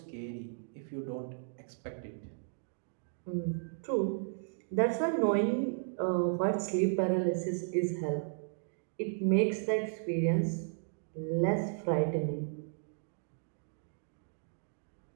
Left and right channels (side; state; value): left; silent; digital silence